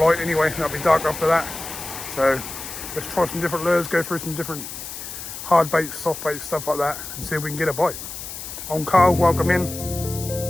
anyway, it'll be dark after that. So let's try some different lures, go through some different hard baits, soft baits, stuff like that, and see if we can get a bite. I'm Carl, welcome in.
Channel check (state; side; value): noise; left; hiss, 9 dB below the sound